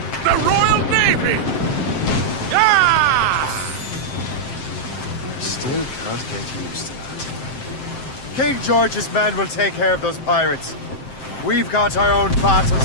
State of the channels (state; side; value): late; right; 7.7 ms